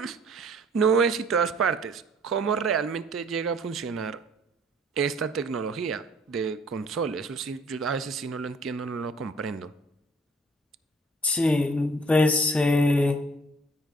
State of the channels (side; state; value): both; normal; correlation 0.56